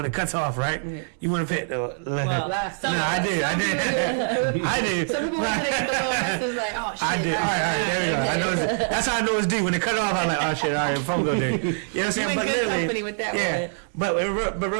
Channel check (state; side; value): silent; left; digital silence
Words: it cuts off, right? You want to pay it. I did. Some people want to get the little message like, oh shit. I did. All right, there we go. I know that's how I know it's due. When it cut off, I'm like, oh shit, all right, phone bill due. You know what I'm saying? But good company with that one. But